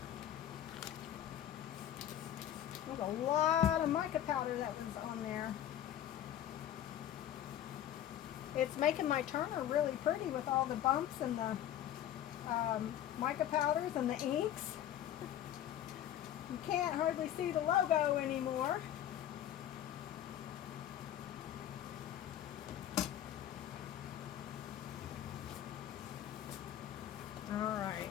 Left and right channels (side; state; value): right; quieter; 11.4 dB